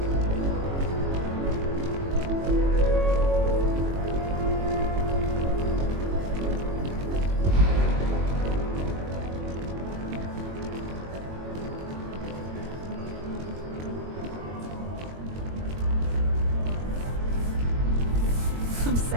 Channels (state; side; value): late; left; 22 ms